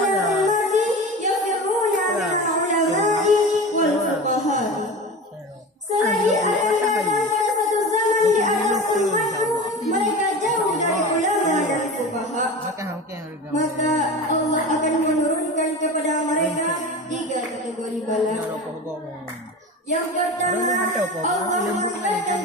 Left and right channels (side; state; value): both; normal; correlation 0.30